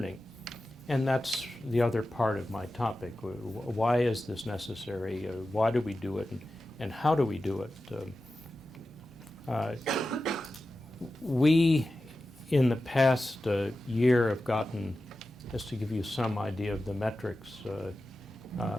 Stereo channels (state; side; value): normal; both; correlation 0.93